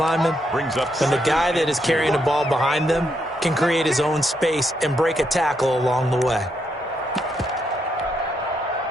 When the guy that is carrying the ball behind them can create his own space and break a tackle along the way.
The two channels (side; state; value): both; normal; correlation 0.78